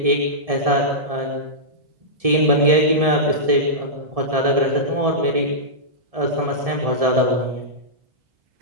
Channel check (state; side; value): late; left; 1.7 ms